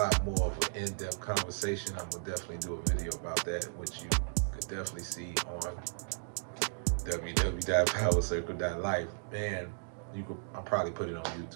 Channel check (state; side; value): silent; left; digital silence